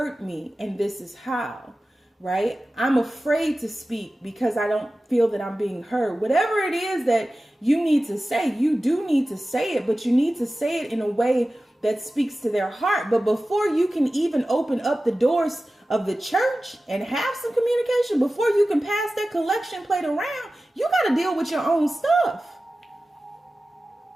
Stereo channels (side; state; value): both; normal; correlation 0.95